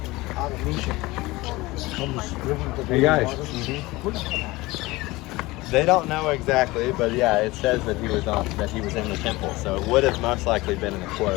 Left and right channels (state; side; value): quieter; right; 20.7 dB